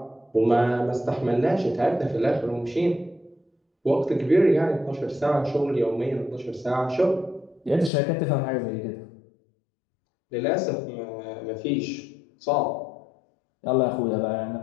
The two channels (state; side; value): drops out; right; at 7.9 s